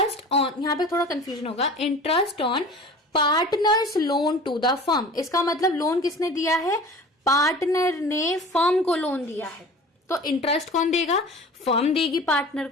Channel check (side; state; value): both; normal; correlation 0.40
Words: ऑन, यहाँ पे थोड़ा कंफ्यूजन होगा, interest on partners loan to the firm. इसका मतलब लोन किसने दिया है, पार्टनर ने फर्म को लोन दिया है, तो इंटरेस्ट कौन देगा, फर्म देगी पार्टनर